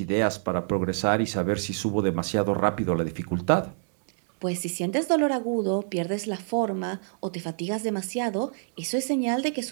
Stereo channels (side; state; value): left; silent; digital silence